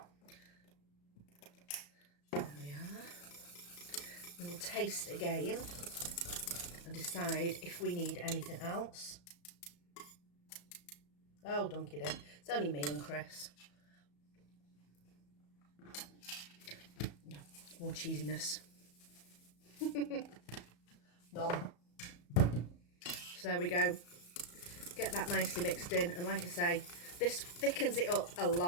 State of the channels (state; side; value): late; right; 34 ms